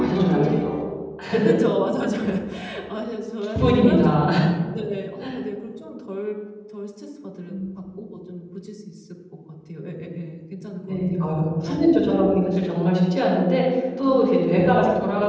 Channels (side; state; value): both; identical; correlation 1.00